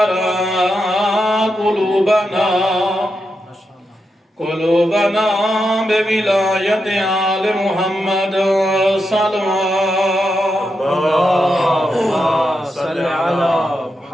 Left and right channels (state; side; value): normal; both; correlation 0.86